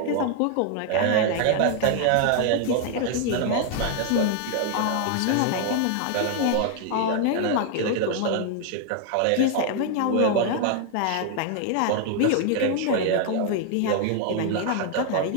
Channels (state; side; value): different; both; correlation 0.00